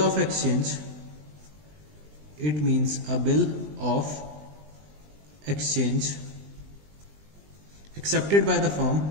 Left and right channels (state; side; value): late; left; 20 ms